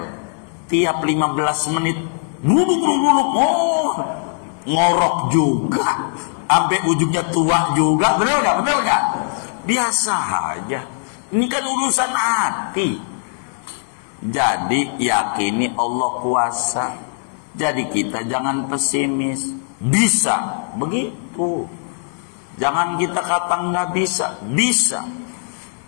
Tiap 15 menit buluk. Oh, ngorok juga. Sampai ujungnya tua juga. Bener gak? Biasa aja. Ini kan urusan hati. Jadi yakini Allah kuasa. Jadi kita jangan pesimis. Bisa. Begitu. Jangan kita kata nggak bisa. Bisa.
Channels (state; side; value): silent; right; digital silence